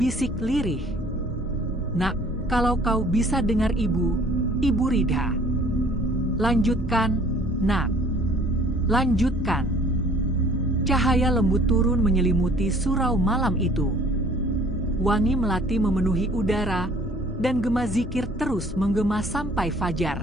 lirih. Nak, kalau kau bisa dengar ibu, Ibu Ridha. Lanjutkan, nak. Lanjutkan. Cahaya lembut turun menyelimuti surau malam itu. Wangi melati memenuhi udara, dan gema zikir terus menggema sampai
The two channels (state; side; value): normal; both; correlation 0.54